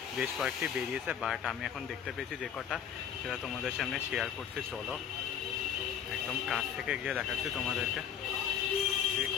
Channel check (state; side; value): quieter; right; 8.7 dB